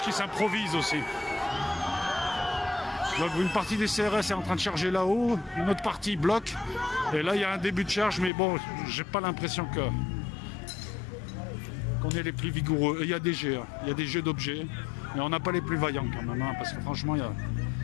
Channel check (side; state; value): right; drops out; at 8.3 s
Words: qui s'improvise aussi. Donc, une partie des CRS est en train de charger là-haut, une autre partie bloque. Et là, il y a un début de charge, mais bon, j'ai pas l'impression qu'on est les plus vigoureux. Et il y a des jets, hein. Il y a des jets d'objets. Mais on n'a pas les plus vaillants quand même, hein, parce que franchement, il y a...